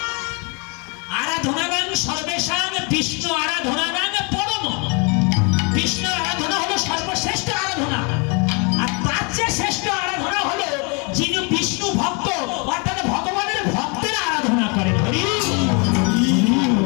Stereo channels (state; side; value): quieter; right; 32.8 dB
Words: আরাধনাগাং সর্বেশাং বিষ্ণু আরাধনাগাং পরম। বিষ্ণুর আরাধনা হলো সর্বশ্রেষ্ঠ আরাধনা, আর তার চেয়ে শ্রেষ্ঠ আরাধনা হলো যিনি বিষ্ণু ভক্ত, অর্থাৎ ভগবানের ভক্তের আরাধনা করেন।